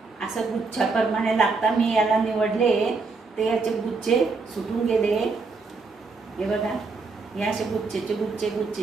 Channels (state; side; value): quieter; left; 4.2 dB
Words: असं गुच्छाप्रमाणे लागतात. मी याला निवडले, ते याचे गुच्छे सुटून गेले. हे बघा, हे असे गुच्छेचे